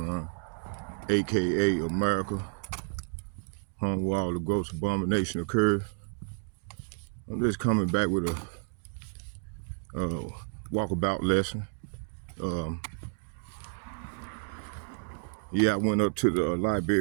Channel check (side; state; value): left; silent; digital silence